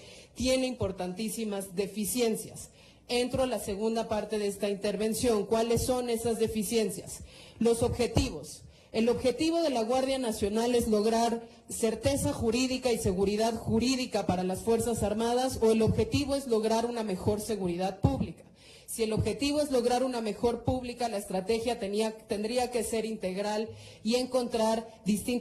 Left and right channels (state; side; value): identical; both; correlation 1.00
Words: tiene importantísimas deficiencias. Entro a la segunda parte de esta intervención. ¿Cuáles son esas deficiencias? Los objetivos. El objetivo de la Guardia Nacional es lograr certeza jurídica y seguridad jurídica para las Fuerzas Armadas, o el objetivo es lograr una mejor seguridad pública. Si el objetivo es lograr una mejor pública, la estrategia tendría que ser integral y encontrar